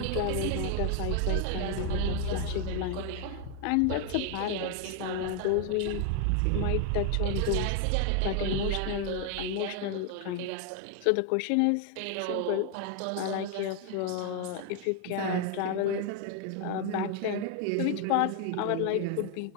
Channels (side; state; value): both; different; correlation 0.00